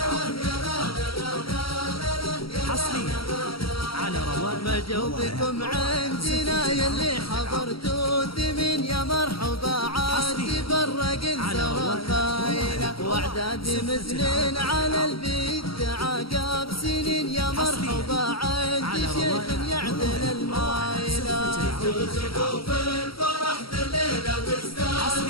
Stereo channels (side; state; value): right; late; 0.75 ms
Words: ما جوبكم عندنا يلي حضرتوا ثمين يا مرحبا عاد تفرق انسر خايلة واعداد مزنين على البيت عقاب سنين يا مرحبا عاد شيخ يعدل المايلة ترزقوا في الفرح الليلة